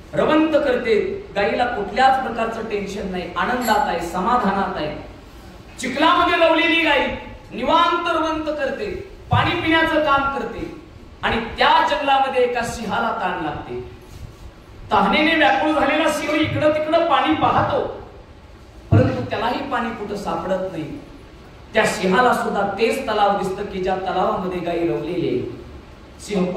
रवंत करते, गायीला कुठल्याच प्रकारचं टेन्शन नाही, आनंदात आहे, समाधानात आहे। चिखलामध्ये रवलेली गायी निवांत रवंत करते, पाणी पिण्याचं काम करते, आणि त्या जंगलामध्ये एका सिंहाला ताण लागते। तहानेने व्याकुळ झालेला सिंह इकडं तिकडं पाणी पाहतो, परंतु त्यालाही पाणी कुठं सापडत नाही। त्या सिंहाला सुद्धा तेच तलाव दिसतं की ज्या तलावामध्ये गायी रवलेली आहे। सिंह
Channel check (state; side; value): identical; both; correlation 1.00